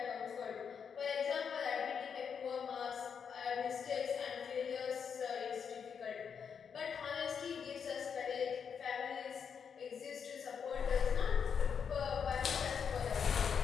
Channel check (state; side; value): quieter; right; 6.9 dB